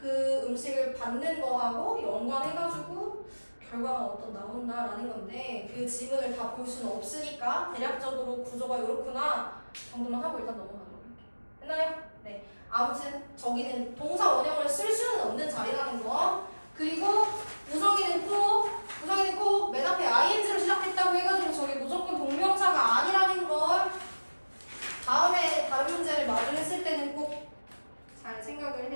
음식을 받는 거하고 연관해가지고 결과가 어떤 나온다라는 건데 그 지문을 다 볼 수는 없으니까 대략적으로 구조가 이렇구나 정도만 하고 일단 넘어가도록 할게요. 됐나요? 네. 아무튼 저기는 동사 원형을 쓸 수는 없는 자리라는 거. 그리고 우성이는 꼭 맨 앞에 ing로 시작했다고 해가지고 저게 무조건 동명사가 아니라는 걸 다음에 다른 문제를 마주했을 때는 꼭 잘 생각을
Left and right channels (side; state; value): both; inverted; correlation -1.00